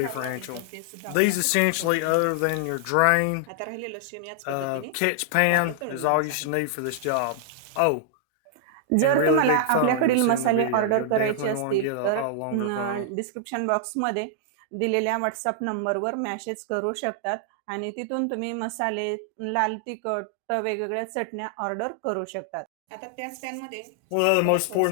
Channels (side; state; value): both; different; correlation -0.01